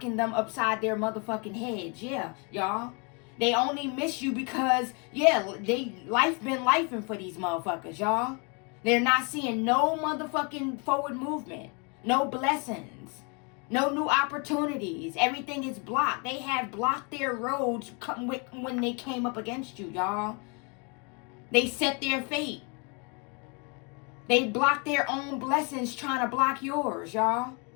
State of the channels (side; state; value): right; quieter; 33.7 dB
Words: them upside their motherfucking heads. Yeah, y'all. They only miss you because, yeah, life been lifing for these motherfuckers, y'all. They're not seeing no motherfucking forward movement. No blessings. No new opportunities. Everything is blocked. They have blocked their roads when they came up against you, y'all. They set their fate. They block their own blessings trying to block yours, y'all.